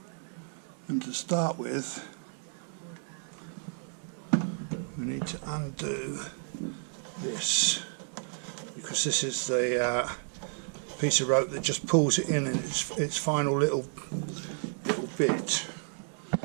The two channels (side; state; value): left; silent; 57 dB below the other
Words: and to start with we need to undo this, because this is the piece of rope that just pulls it in its final little bit.